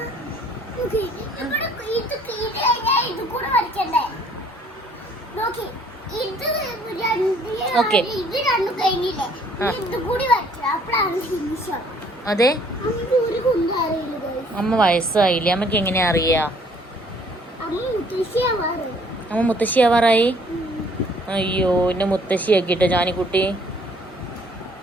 ഓക്കെ അതെ അമ്മ വയസ്സായില്ലേ? അമ്മക്ക് എങ്ങനെയാ അറിയാ? അമ്മ മുത്തശ്ശി ആവാറായി. അയ്യോ എന്നെ മുത്തശ്ശി ആക്കിട്ടോ ജാനിക്കുട്ടി.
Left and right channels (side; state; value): both; normal; correlation 0.60